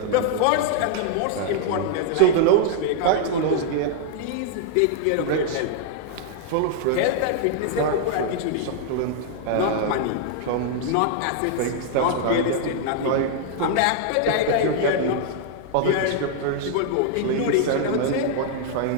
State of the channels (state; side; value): different; both; correlation -0.01